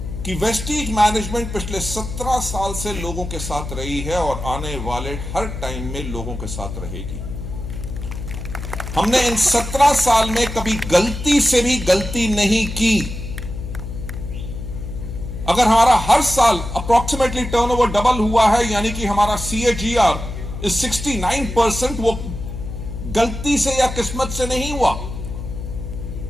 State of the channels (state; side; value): noise; left; hum, 8 dB below the sound